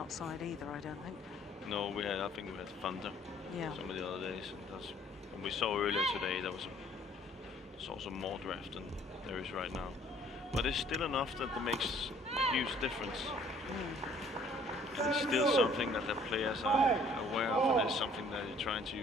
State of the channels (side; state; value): both; normal; correlation 0.58